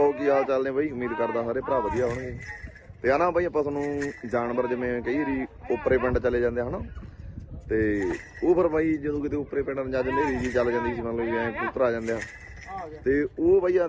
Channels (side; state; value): both; identical; correlation 1.00